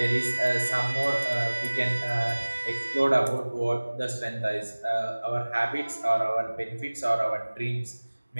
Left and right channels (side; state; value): both; inverted; correlation -1.00